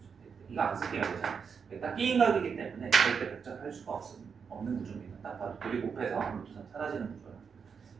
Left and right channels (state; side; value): quieter; left; 6.2 dB